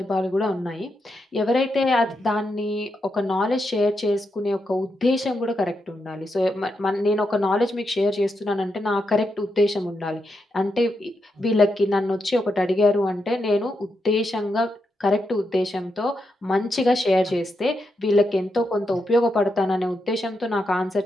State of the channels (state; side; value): normal; both; correlation 0.84